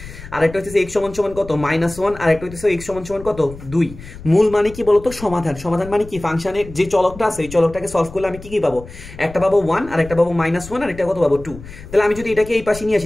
আর একটা হইতেছে x সমান কত -1, আর একটা হইতেছে x সমান কত 2। মূল মানে কি বলতো, সমাধান। সমাধান মানে কি, ফাংশনের যে চলকটা আছে এই চলকটাকে সলভ করলে আমি কি কি পাবো, একটা পাবো 1, আর একটা পাবো -1, আর একটা কত পাবো 2। তাহলে আমি যদি এটাকে এই পাশে নিয়ে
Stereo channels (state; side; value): noise; left; rumble, 16 dB below the sound